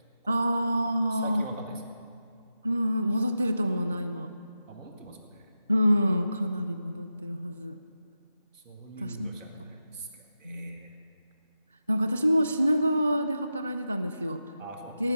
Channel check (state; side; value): inverted; both; correlation -0.90